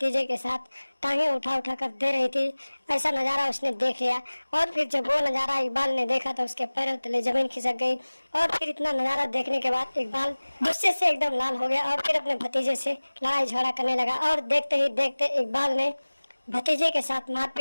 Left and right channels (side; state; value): both; inverted; correlation -1.00